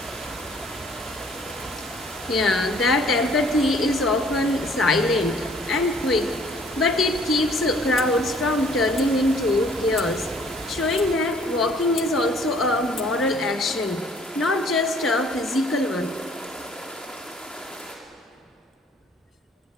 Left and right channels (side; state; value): both; normal; correlation 0.57